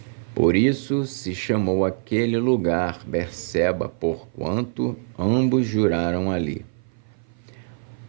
Por isso se chamou aquele lugar Berseba, porquanto ambos juraram ali.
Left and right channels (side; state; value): left; silent; 56 dB below the other